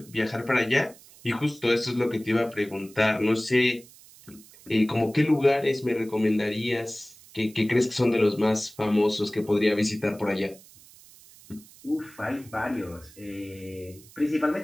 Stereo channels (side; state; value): right; noise; hiss, 23 dB below the sound